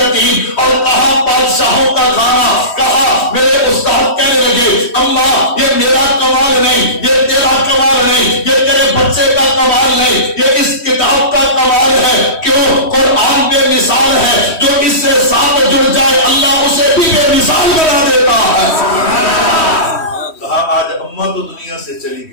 اور کہاں بادشاہوں کا کھانا؟ کہا میرے استاد کہنے لگے اماں یہ میرا کمال نہیں، یہ تیرا کمال نہیں، یہ تیرے بچے کا کمال نہیں، یہ اس کتاب کا کمال ہے۔ کیوں؟ قرآن بے مثال ہے، جو اس سے ساتھ جڑ جائے اللہ اسے بھی بے مثال بنا دیتا ہے۔ کہا آج اماں تو دنیا سے چلی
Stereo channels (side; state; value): right; late; 3.1 ms